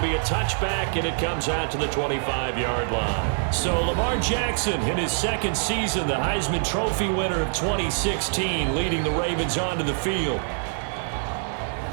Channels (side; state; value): left; silent; 62 dB below the other